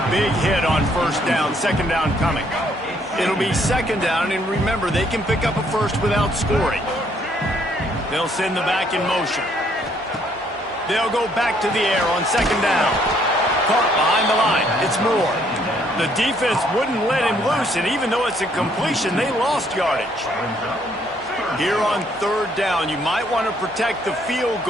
big hit on 1st down. 2nd down coming. It'll be 2nd down, and remember, they can pick up a first without scoring. They'll send the back in motion. They'll go back to the air on 2nd down. Caught behind the line. It's Moore. The defense wouldn't let him loose, and even though it's a completion, they lost yardage. Here on 3rd down, you might want to protect the field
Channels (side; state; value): both; normal; correlation 0.67